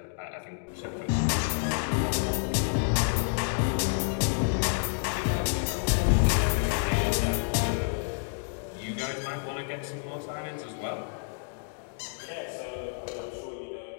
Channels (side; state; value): right; silent; digital silence